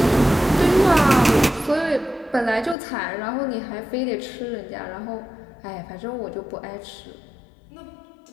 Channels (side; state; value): right; drops out; at 2.8 s